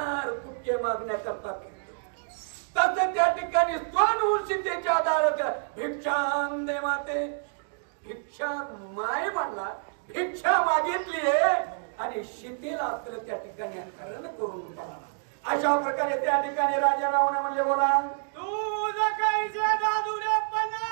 कुटके मागण्याकरता फिरतो. तसं त्या ठिकाणी स्वतःहून सीतेच्या दारात भिक्षां दे माते, भिक्षा माय म्हणला, भिक्षा मागितली आणि सीतेला तर त्या ठिकाणी हरण करून टाकला. अशा प्रकारे त्या ठिकाणी राजा रावण म्हणले बोला तुझ काहीचे दादुरे पण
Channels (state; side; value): silent; left; digital silence